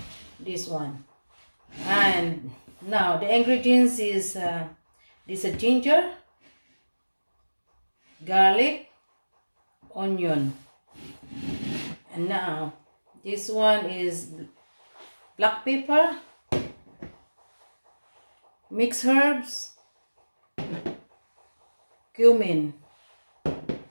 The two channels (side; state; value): both; inverted; correlation -1.00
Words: this one. And now the ingredients is this is ginger, garlic, onion, and now this one is black pepper, mixed herbs, cumin.